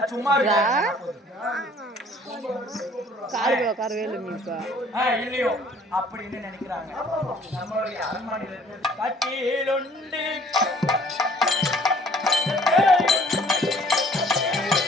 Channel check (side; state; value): both; normal; correlation 0.56